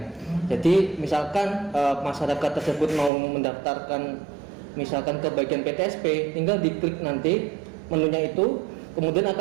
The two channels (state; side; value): drops out; left; at 3.1 s